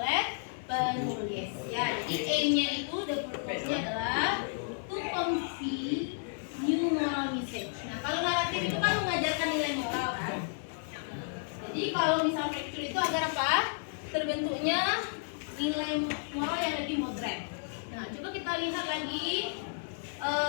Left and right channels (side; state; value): right; silent; digital silence